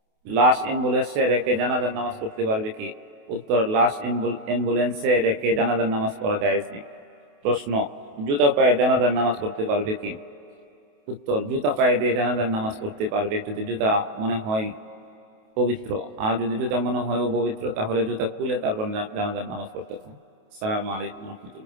লাশ অ্যাম্বুলেন্সে রেখে জানাজার নামাজ পড়তে পারবে কি? উত্তর: লাশ অ্যাম্বুলেন্সে রেখে জানাজার নামাজ পড়া জায়েজ নেই। প্রশ্ন: জুতা পায়ে জানাজার নামাজ পড়তে পারবে কি? উত্তর: জুতা পায়ে দিয়ে জানাজার নামাজ পড়তে পারবে যদি জুতা মনে হয় পবিত্র। আর যদি জুতা মনে হয় অপবিত্র, তাহলে জুতা খুলে তারপর জানাজার নামাজ পড়তে হবে। আসসালামু আলাইকুম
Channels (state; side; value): late; left; 28 ms